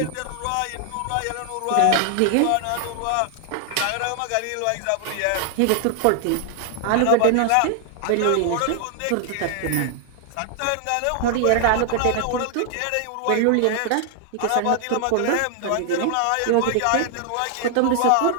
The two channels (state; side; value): different; both; correlation 0.00